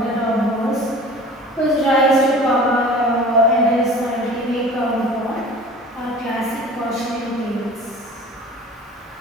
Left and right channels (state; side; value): normal; both; correlation 0.42